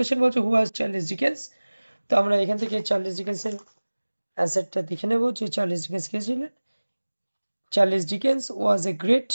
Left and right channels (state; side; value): inverted; both; correlation -1.00